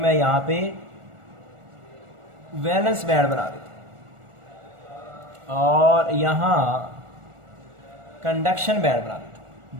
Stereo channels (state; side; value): late; left; 1.4 ms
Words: यहाँ पे वैलेंस बैंड बना देता हूँ और यहाँ कंडक्शन बैंड बना देता